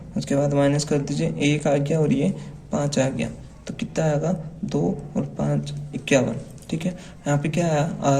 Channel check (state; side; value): identical; both; correlation 1.00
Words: उसके बाद माइनस कर दीजिए, 1 आ गया और ये 5 आ गया, तो कितना आएगा 2 और 5 51, ठीक है। यहाँ पे क्या आया